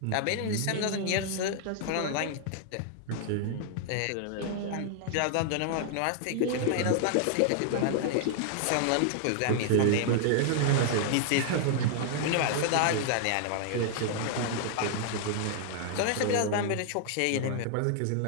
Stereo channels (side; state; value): both; different; correlation -0.01